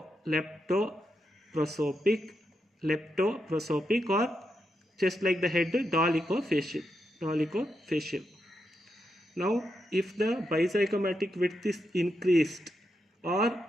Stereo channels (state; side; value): normal; both; correlation 0.84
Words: or just like the head, dolichofacial. Now, if the bizygomatic width is increased or